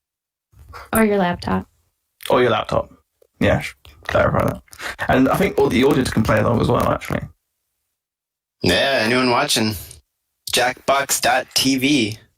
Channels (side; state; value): both; identical; correlation 1.00